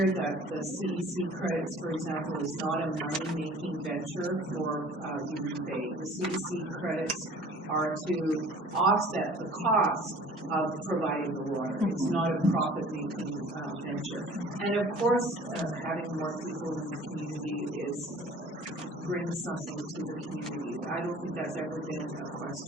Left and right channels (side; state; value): both; normal; correlation 0.48